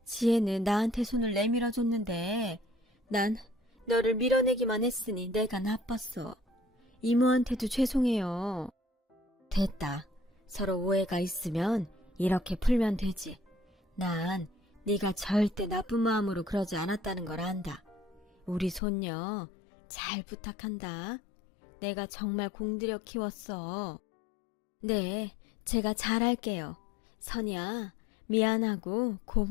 지혜는 나한테 손을 내밀어줬는데 난 너를 밀어내기만 했으니 내가 나빴어. 이모한테도 죄송해요. 됐다. 서로 오해가 있으면 이렇게 풀면 되지. 난 네가 절대 나쁜 마음으로 그러지 않았다는 걸 안다. 우리 손녀 잘 부탁한다. 내가 정말 공들여 키웠어. 네, 제가 잘할게요. 선이야, 미안하고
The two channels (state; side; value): drops out; right; at 18.8 s